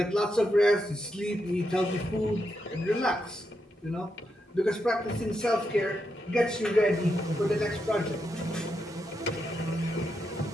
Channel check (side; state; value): both; normal; correlation 0.84